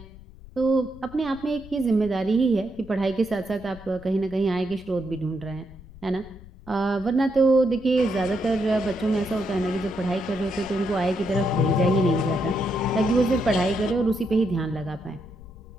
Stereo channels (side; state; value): left; noise; rumble, 19 dB below the sound